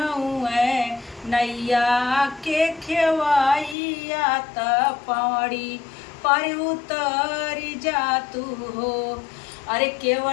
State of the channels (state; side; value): drops out; right; at 3.8 s